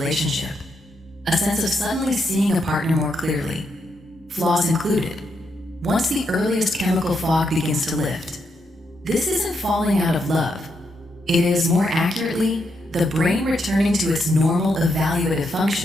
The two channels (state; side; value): normal; both; correlation 0.80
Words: a sense of suddenly seeing a partner more clearly, flaws included, once the earliest chemical fog begins to lift. This isn't falling out of love. It is, more accurately, the brain returning to its normal evaluative